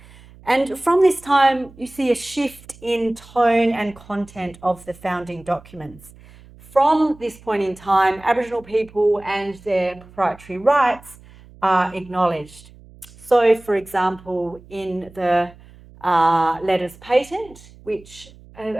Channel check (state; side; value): noise; right; hum, 23 dB below the sound